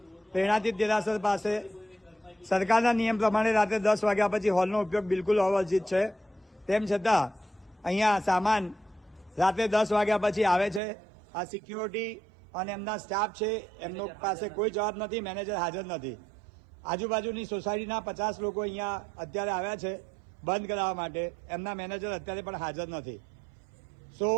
પ્રેરણાતીત દેરાસર પાસે. સરકારના નિયમ પ્રમાણે રાત્રે 10 વાગ્યા પછી હોલનો ઉપયોગ બિલકુલ અવર્જિત છે. તેમ છતાં અહીંયા સામાન રાત્રે 10 વાગ્યા પછી આવે છે. આ સિક્યુરિટી અને એમના સ્ટાફ છે, એમનો પાસે કોઈ જવાબ નથી. મેનેજર હાજર નથી. આજુબાજુની સોસાયટીના 50 લોકો અહીંયા અત્યારે આવ્યા છે બંધ કરાવવા માટે. એમના મેનેજર અત્યારે પણ હાજર નથી.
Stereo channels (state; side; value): drops out; left; at 10.8 s